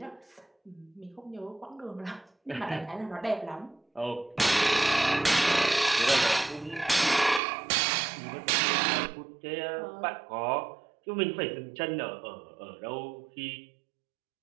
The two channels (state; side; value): drops out; left; at 7.4 s